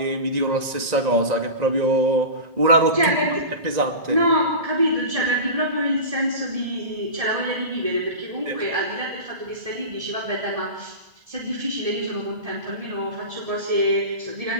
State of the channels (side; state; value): left; late; 1.9 ms